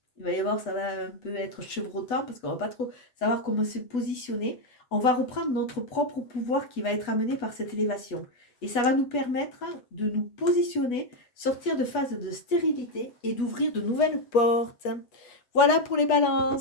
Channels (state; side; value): late; right; 8.2 ms